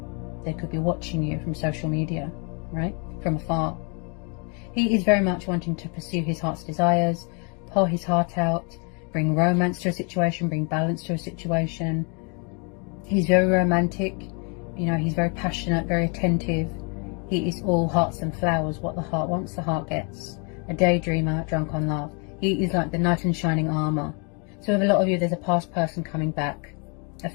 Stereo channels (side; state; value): right; quieter; 35.2 dB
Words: They could be watching you from social media, right? From afar. He is very much wanting to pursue his heart's desires, pour his heart out, bring romance to a situation, bring balance to a situation. He's very romantic, you know, he's very passionate, very attentive. He is all hearts and flowers. What the heart wants, the heart gets. A daydreamer, drunk on love. He is like the knight in shining armour. So with a lot of you, there's a past person coming back, a